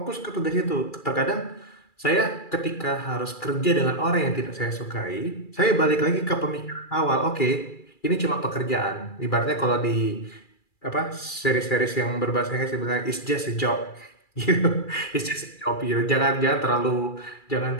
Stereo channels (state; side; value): late; right; 2.3 ms